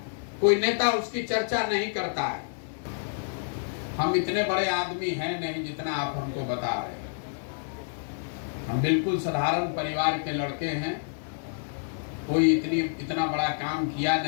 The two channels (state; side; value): silent; right; digital silence